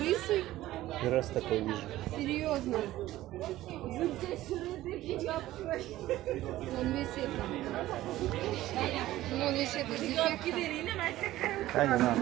Первый раз такой вижу. Серьезно? Он весь это. Он весь это с дефектом. А, не надо.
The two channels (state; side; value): quieter; left; 15.5 dB